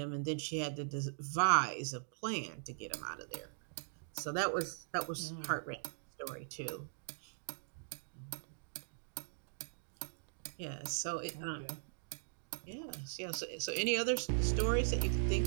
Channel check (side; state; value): left; silent; digital silence